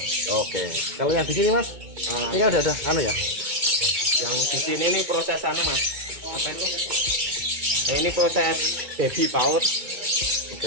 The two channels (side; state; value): left; late; 2.2 ms